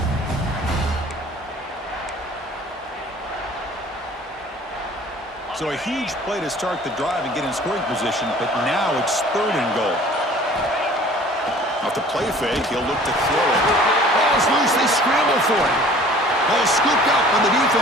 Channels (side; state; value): both; normal; correlation 0.49